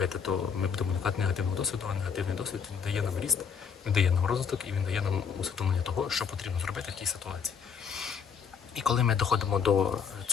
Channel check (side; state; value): right; quieter; 6.6 dB